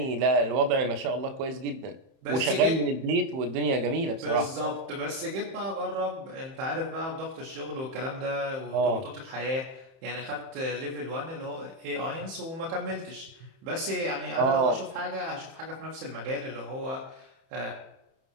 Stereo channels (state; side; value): late; left; 31 ms